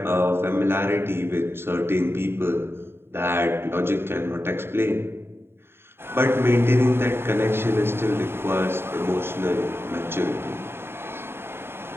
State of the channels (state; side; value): late; left; 0.11 ms